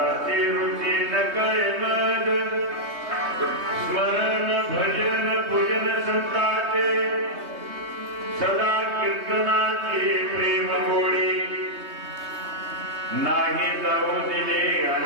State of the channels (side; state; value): left; late; 3.2 ms